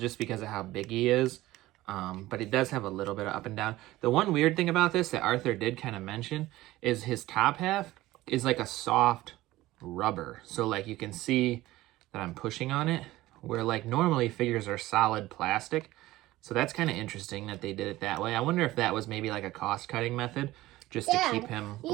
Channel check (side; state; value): left; quieter; 17.1 dB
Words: because of how big he is. But it does have a little bit of up and down. The one weird thing about this that Arthur did kind of mention is his top half is like a soft rubber. So like you can see that I'm pushing on it, where like normally figures are solid plastic. So that's kind of interesting that they did it that way. I wonder if that was maybe like a cost-cutting method. just to keep him a